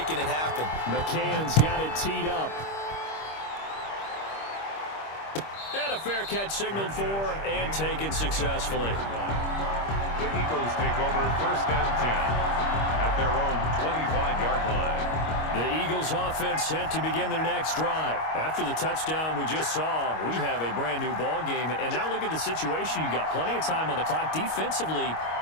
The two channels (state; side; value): late; right; 25 ms